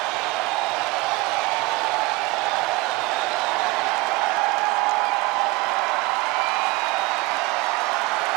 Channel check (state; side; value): quieter; left; 22.0 dB